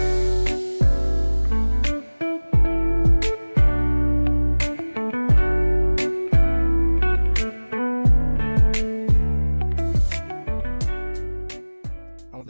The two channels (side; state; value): both; inverted; correlation -1.00